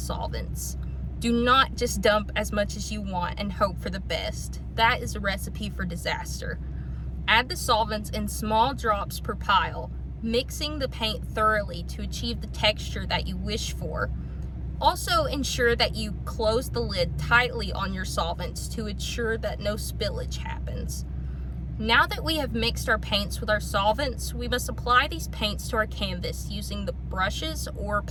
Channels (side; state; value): both; identical; correlation 1.00